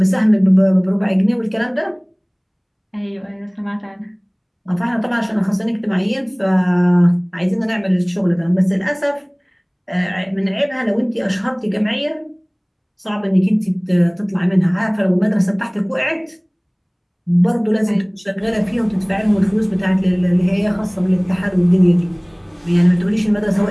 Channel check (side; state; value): both; identical; correlation 1.00